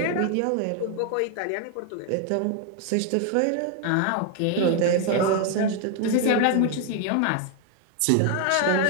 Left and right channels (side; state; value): both; different; correlation 0.01